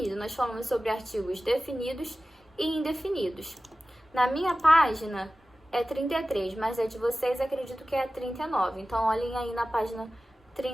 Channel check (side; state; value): both; normal; correlation 0.96